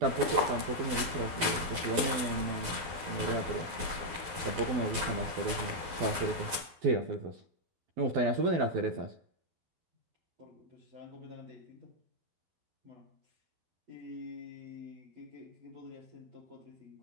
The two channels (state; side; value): late; left; 11 ms